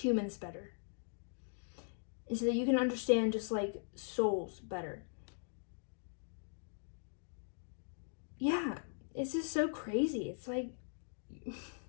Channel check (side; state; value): right; silent; digital silence